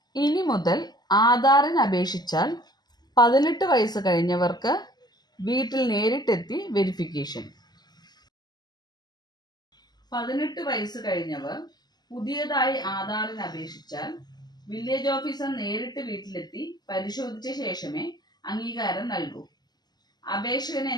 ഇനി മുതൽ ആധാറിന് അപേക്ഷിച്ചാൽ 18 വയസ്സ് കഴിഞ്ഞവർക്ക് വീട്ടിൽ നേരിട്ടെത്തി വെരിഫിക്കേഷൻ. 18 വയസ്സ് കഴിഞ്ഞവർ പുതിയതായി ആധാറിന് അപേക്ഷിച്ചാൽ വില്ലേജ് ഓഫീസർ നേരിട്ട് വീട്ടിലെത്തി പരിശോധിച്ച ശേഷമേ അംഗീകാരം നൽകൂ. അപേക്ഷകനെ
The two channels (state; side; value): late; right; 0.20 ms